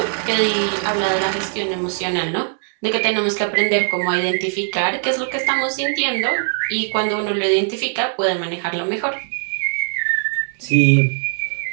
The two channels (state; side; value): silent; left; 65 dB below the other